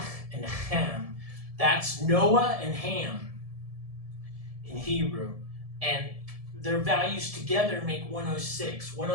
and Ham. That's Noah and Ham in Hebrew. And their values together make 106.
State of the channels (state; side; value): late; left; 1.7 ms